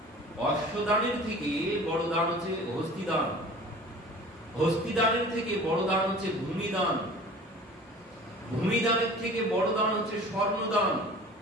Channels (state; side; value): normal; both; correlation 0.43